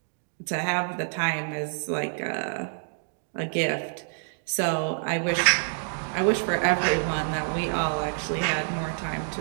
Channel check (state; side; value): silent; left; digital silence